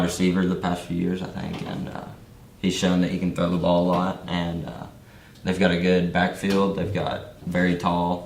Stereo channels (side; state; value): both; identical; correlation 1.00